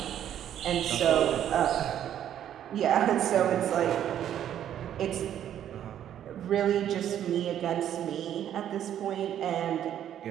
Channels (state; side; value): quieter; left; 10.5 dB